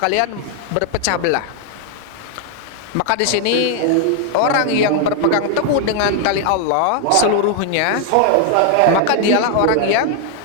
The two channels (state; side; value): different; both; correlation 0.00